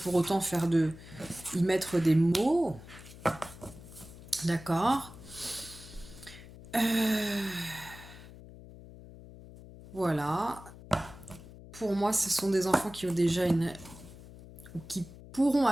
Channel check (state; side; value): noise; left; hum, 17 dB below the sound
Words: autant y mettre des mots. D'accord. Voilà. Pour moi, ce sont des enfants qui ont déjà ou qui pourront